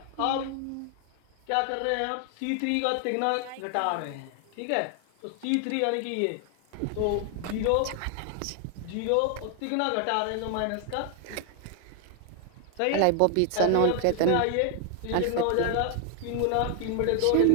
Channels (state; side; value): different; both; correlation 0.00